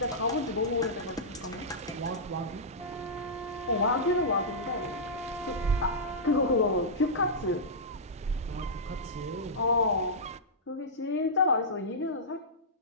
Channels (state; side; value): normal; both; correlation -0.13